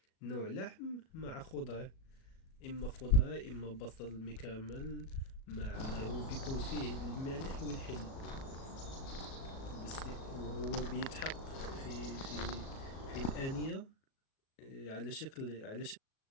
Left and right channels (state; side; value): late; right; 37 ms